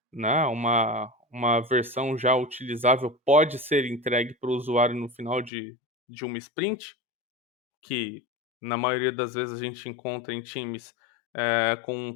né, uma versão já utilizável pode ser entregue para o usuário no final de uma sprint, que na maioria das vezes a gente encontra em times com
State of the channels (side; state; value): right; drops out; at 5.5 s